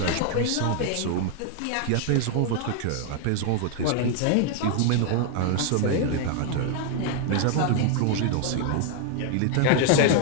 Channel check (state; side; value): different; both; correlation 0.00